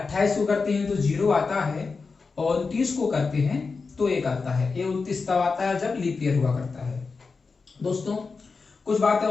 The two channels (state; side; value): quieter; right; 4.5 dB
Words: को करते हैं तो 0 आता है और 29 को करते हैं तो 1 आता है। ये 29 तब आता है जब लीप ईयर हुआ करता है। दोस्तों कुछ बातें